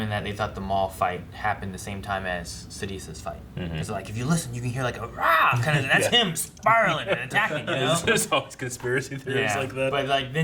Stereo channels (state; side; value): identical; both; correlation 1.00